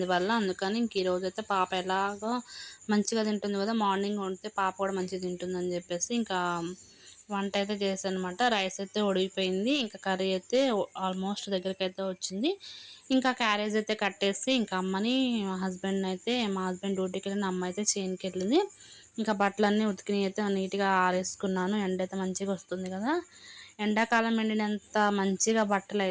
వల్ల. అందుకని ఇంక ఈరోజు అయితే పాప ఎలాగో మంచిగా తింటుంది కదా, మార్నింగ్ వండితే పాప కూడా మంచిగా తింటుందని చెప్పేసి ఇంకా వంట అయితే చేశాను అనమాట. రైస్ అయితే ఉడికిపోయింది, ఇంకా కర్రీ అయితే ఆల్మోస్ట్ దగ్గరికి అయితే వచ్చింది. ఇంకా క్యారేజ్ అయితే కట్టేసి ఇంకా అమ్మని మా హస్బెండ్ డ్యూటీకి వెళ్ళిన, అమ్మ అయితే చేనుకి వెళ్ళింది. ఇంకా బట్టలన్నీ ఉతికినవి అయితే నీట్గా ఆరేసుకున్నాను. ఎండ అయితే మంచిగా వస్తుంది కదా, ఎండాకాలం ఎండినంత మంచిగా బట్టలు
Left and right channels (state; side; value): identical; both; correlation 1.00